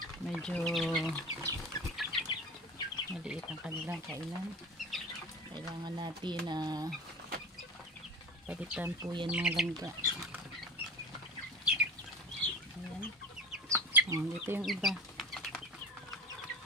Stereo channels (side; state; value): both; normal; correlation 0.35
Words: Medyo maliit ang kanilang kainan. Kailangan natin na palitan po yan mga langga. Ayan. Dito yung iba.